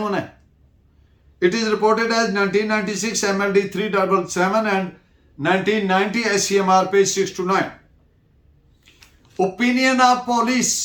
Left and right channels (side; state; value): both; identical; correlation 1.00